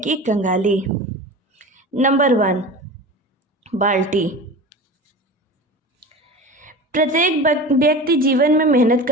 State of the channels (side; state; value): both; normal; correlation 0.33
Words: कंगाली। नंबर 1, बाल्टी। प्रत्येक व्यक्ति जीवन में मेहनत